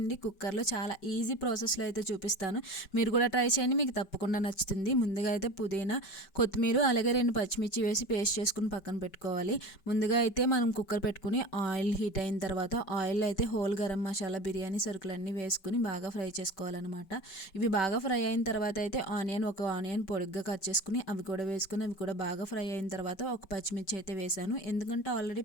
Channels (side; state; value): right; late; 5.2 ms